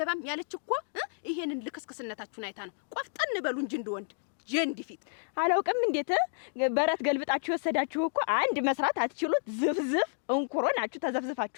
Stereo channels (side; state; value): right; silent; digital silence